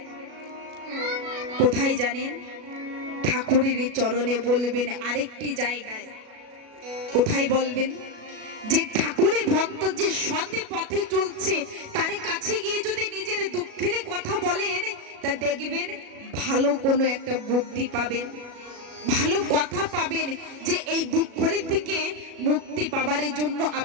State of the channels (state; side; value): late; left; 37 ms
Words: কোথায় জানেন? ঠাকুরের চরণে বলবেন। আরেকটি জায়গায় কোথায় বলবেন? যে ঠাকুরের ভক্ত যে সৎ পথে চলছে তার কাছে গিয়ে যদি নিজের দুঃখের কথা বলেন তা দেখবেন ভালো কোনো একটা বুদ্ধি পাবেন, ভালো কথা পাবেন, যে এই দুঃখের থেকে মুক্তি পাবার জন্য